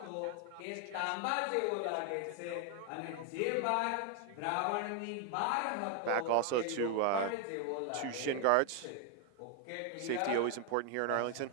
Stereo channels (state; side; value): different; both; correlation 0.00